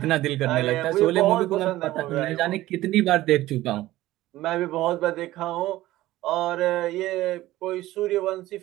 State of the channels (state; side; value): quieter; left; 16.2 dB